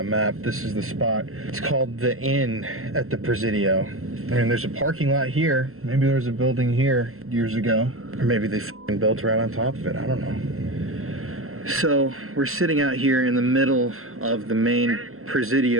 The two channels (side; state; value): left; late; 0.62 ms